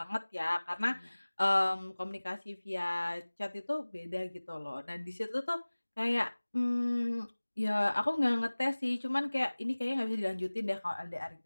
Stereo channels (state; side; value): inverted; both; correlation -1.00